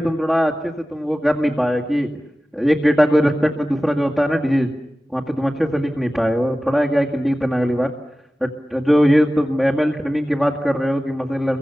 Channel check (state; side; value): normal; both; correlation 0.95